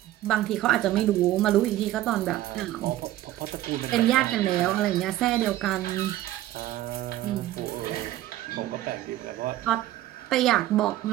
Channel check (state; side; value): quieter; left; 14.6 dB